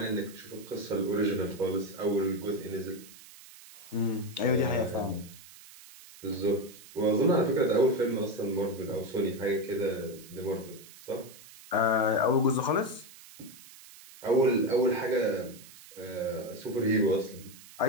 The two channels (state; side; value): noise; right; hiss, 19 dB below the sound